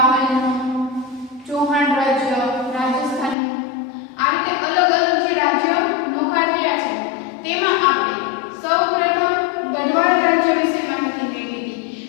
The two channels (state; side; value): drops out; right; at 3.4 s